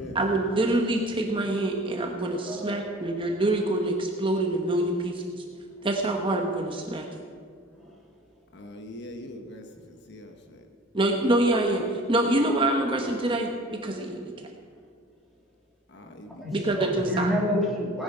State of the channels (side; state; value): both; normal; correlation 0.45